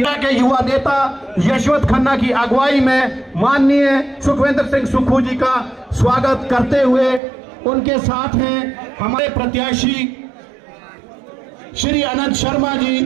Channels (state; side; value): drops out; left; at 7.2 s